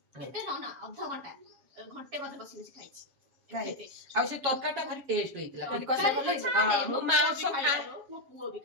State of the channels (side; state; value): left; late; 7.3 ms